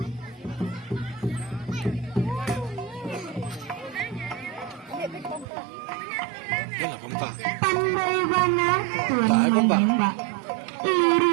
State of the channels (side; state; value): left; drops out; at 5.5 s